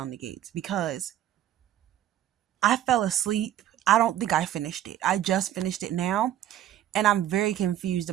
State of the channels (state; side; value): quieter; left; 12.0 dB